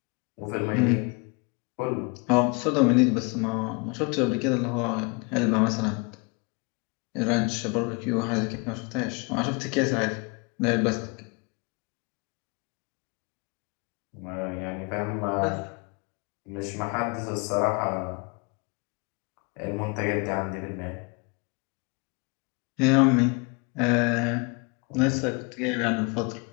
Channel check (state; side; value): quieter; right; 30.9 dB